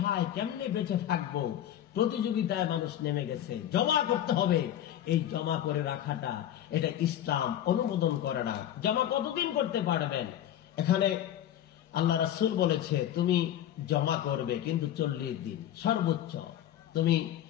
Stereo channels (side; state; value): right; quieter; 11.3 dB